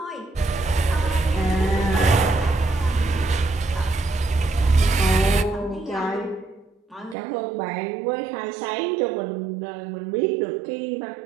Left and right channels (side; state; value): left; drops out; at 7.2 s